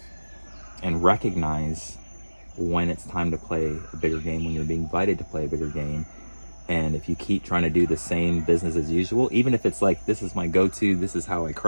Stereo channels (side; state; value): both; inverted; correlation -1.00